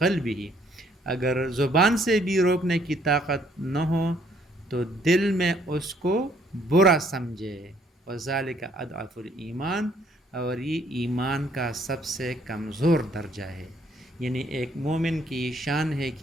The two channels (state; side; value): normal; both; correlation 0.65